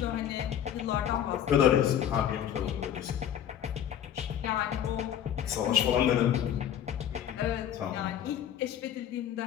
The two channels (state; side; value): quieter; right; 10.0 dB